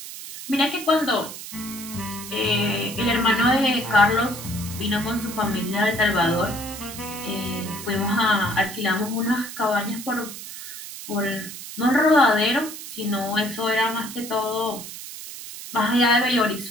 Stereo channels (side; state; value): right; noise; hiss, 11 dB below the sound